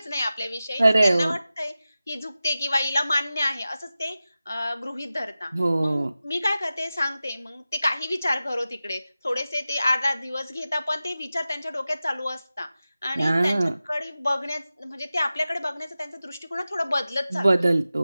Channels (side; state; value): both; inverted; correlation -0.95